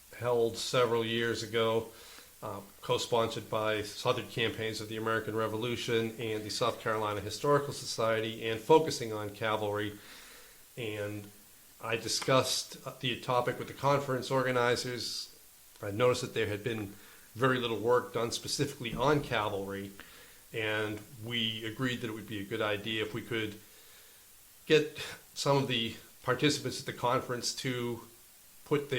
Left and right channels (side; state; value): both; identical; correlation 1.00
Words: held several years ago, co-sponsored by Southern Campaigns of the American Revolution and the South Carolina Historical Society, and focusing on cavalry. And I discussed the topic with the conference organizers. I noticed that there had been very little work done specifically on cavalry, and we agreed that it would be a good idea if we could get some of the participants at the conference to put